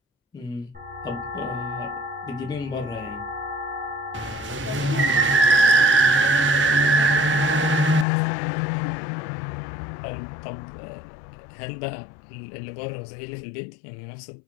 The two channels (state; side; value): drops out; right; at 8.1 s